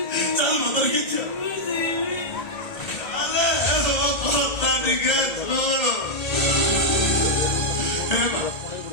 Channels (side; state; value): right; late; 1.3 ms